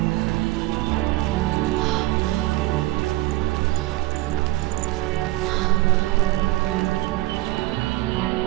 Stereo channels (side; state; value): left; quieter; 19.2 dB